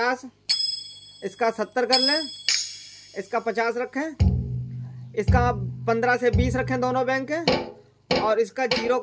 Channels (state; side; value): identical; both; correlation 1.00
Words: इसका 70 कर लें, इसका 50 रखें, इसका 15 से 20 रखें दोनों बैंक के, और इसका 0